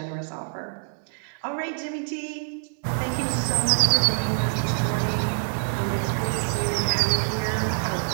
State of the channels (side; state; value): left; silent; digital silence